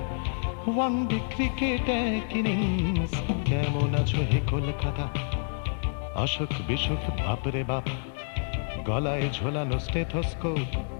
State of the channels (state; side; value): silent; right; 56 dB below the other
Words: ওয়ানডে ক্রিকেট এক ইনিংস। কেমন আছো হে কলকাতা, অসুখ বিসুখ বাপরে বাপ, গলায় ঝোলানো স্টেথোস্কোপ,